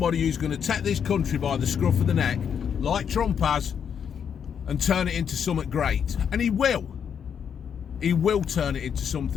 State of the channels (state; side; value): quieter; right; 7.7 dB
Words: who's going to take this country by the scruff of the neck, like Trump has, and turn it into something great. And he will. He will turn it into